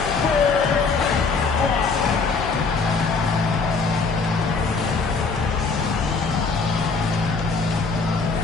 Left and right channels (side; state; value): right; quieter; 4.5 dB